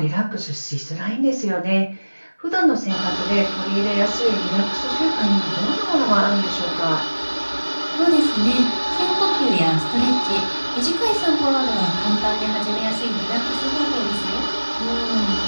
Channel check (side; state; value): both; inverted; correlation -1.00